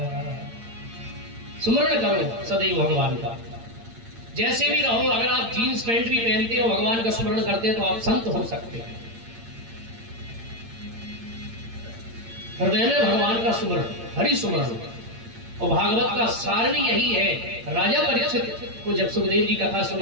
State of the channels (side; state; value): left; late; 8.8 ms